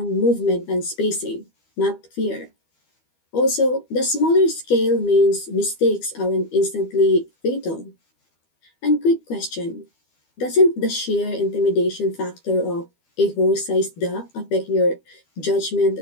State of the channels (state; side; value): late; right; 12 ms